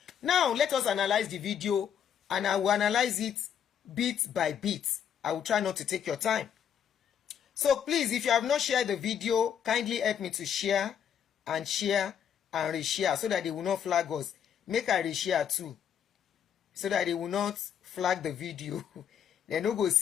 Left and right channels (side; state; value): right; quieter; 8.6 dB